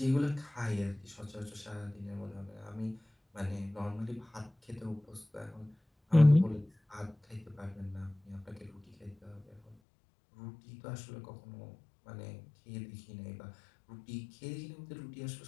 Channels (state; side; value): drops out; right; at 9.8 s